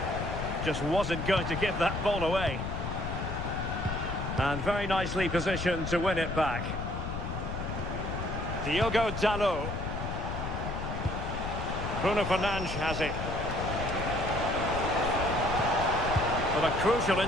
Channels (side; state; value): left; noise; rumble, 4 dB below the sound